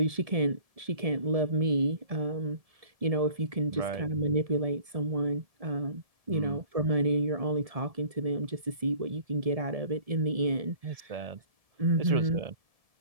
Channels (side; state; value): left; late; 1.7 ms